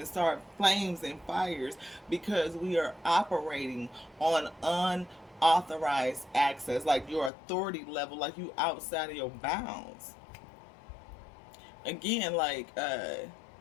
start flames and fires because we are operating on unauthorized access, like your authority level, like you outside of your bounds. Again, like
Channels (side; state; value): right; drops out; at 7.3 s